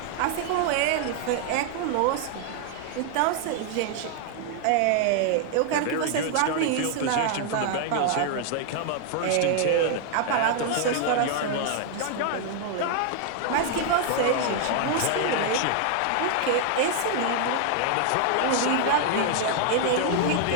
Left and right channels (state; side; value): different; both; correlation 0.00